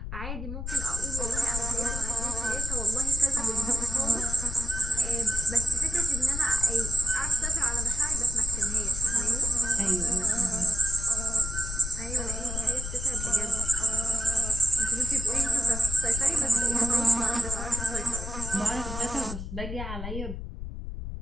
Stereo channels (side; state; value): left; noise; rumble, 8 dB below the sound